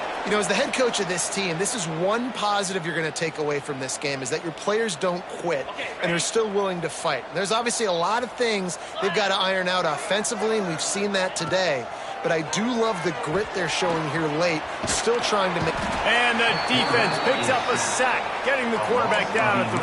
You know, as the head coach of this team, this is one positive you're going to take away from this game, is that your players don't quit and are still willing to fight. There's obviously a lot of things they've got to iron out offensively, and we've seen that today. But I do love the grit they're showing here late, still trying to make... And the defense picks up a sack, getting the quarterback down at the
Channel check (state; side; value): identical; both; correlation 1.00